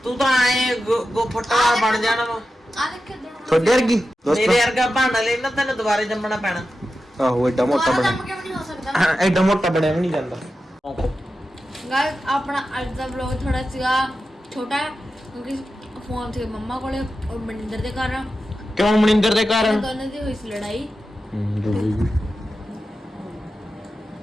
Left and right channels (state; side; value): normal; both; correlation 0.92